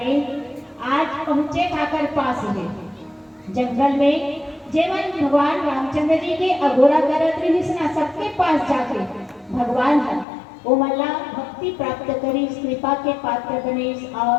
आज पहुंचे काकर पास है जंगल में जेवन भगवान रामचंद्र जी के अघोरा करत रही सबके पास जाके भगवान है वो मल्ला भक्ति प्राप्त करी कृपा के पात्र बने और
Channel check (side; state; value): right; drops out; at 10.2 s